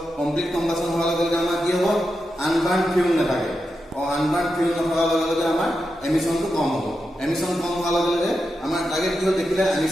কমপ্লিট কম্বাসন হোৱাৰ লগে লগে আমাৰ কি হ'ব আনবাৰ্ন ফিউল নাথাকে আনবাৰ্ন ফিউল নথকাৰ লগে লগে আমাৰ এমিশনটো কম হ'ব এমিশন কম হোৱাৰ লগে লগে আমাৰ টাৰ্গেট কি হ'ল দেখিলে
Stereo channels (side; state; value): both; normal; correlation 0.88